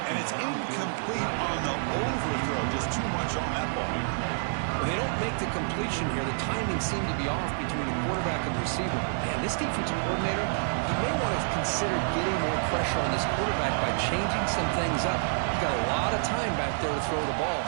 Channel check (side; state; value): left; silent; digital silence